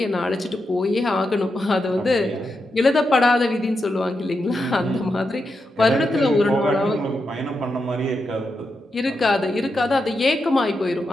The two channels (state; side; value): normal; both; correlation 0.86